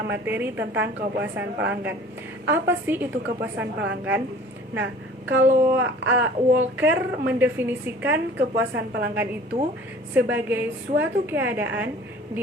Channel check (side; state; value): both; normal; correlation 0.47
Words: materi tentang kepuasan pelanggan. Apa sih itu kepuasan pelanggan? Nah, kalau Walker mendefinisikan kepuasan pelanggan itu sebagai suatu keadaan